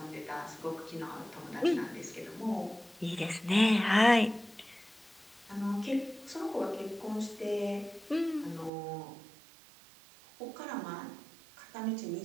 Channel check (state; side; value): drops out; left; at 8.7 s